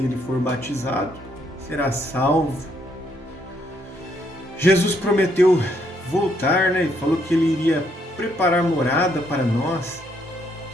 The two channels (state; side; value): normal; both; correlation 0.72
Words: e for batizado será salvo. Jesus prometeu voltar, e falou que ele iria preparar morada para nós,